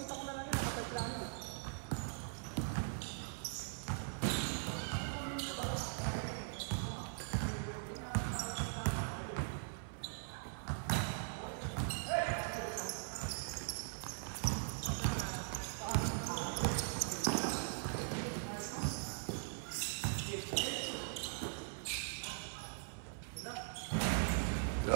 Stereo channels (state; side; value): silent; left; 50 dB below the other